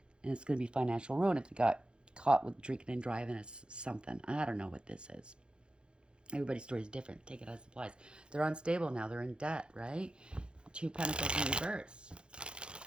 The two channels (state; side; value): late; left; 0.053 ms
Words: And it's going to be financial ruin if they got caught with drinking and driving as something. I don't know what this is. Everybody's story is different. Take it as it applies. They're unstable now. They're in debt, right? 2 Pentacles in reverse.